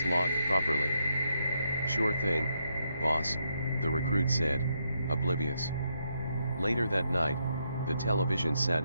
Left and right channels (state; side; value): inverted; both; correlation -0.79